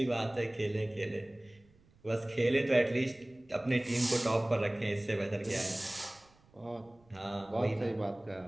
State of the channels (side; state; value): right; noise; rumble, 30 dB below the sound